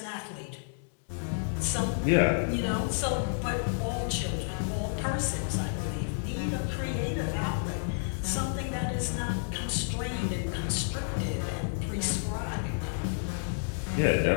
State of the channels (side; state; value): right; silent; digital silence